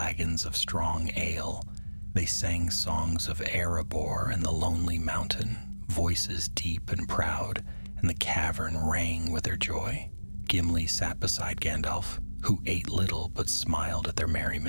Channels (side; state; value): both; inverted; correlation -1.00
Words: of strong ale. They sang songs of Erebor and the Lonely Mountain, voices deep and proud, and the cavern rang with their joy. Gimli sat beside Gandalf, who ate little but smiled at their